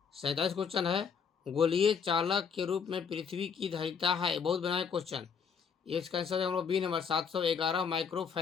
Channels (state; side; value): quieter; right; 6.5 dB